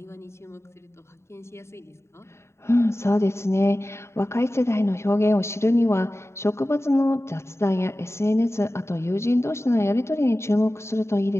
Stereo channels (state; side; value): late; right; 0.13 ms